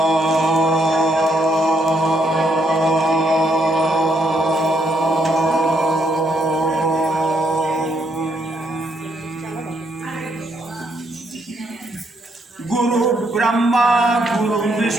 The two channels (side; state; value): both; normal; correlation 0.74